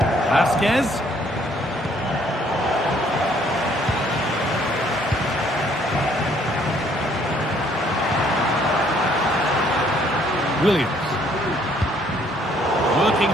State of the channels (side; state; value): both; normal; correlation 0.64